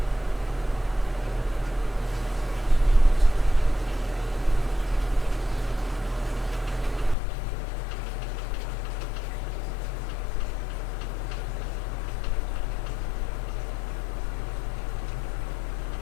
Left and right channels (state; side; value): drops out; right; at 7.2 s